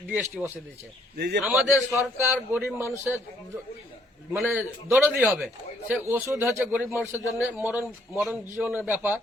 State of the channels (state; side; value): normal; both; correlation 0.66